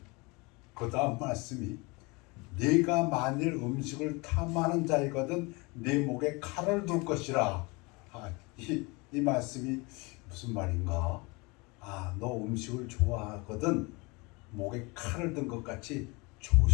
그 다음 말씀이 네가 만일 음식을 탐하는 자이거든 네 목에 칼을 둘 것이라. 이 말씀이 무슨 말인가? 너 음식을 좋아하거든 목에 칼을 든 것 같이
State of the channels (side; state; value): right; quieter; 26.7 dB